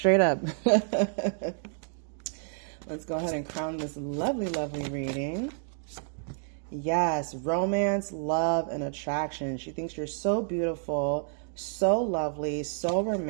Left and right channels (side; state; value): left; silent; digital silence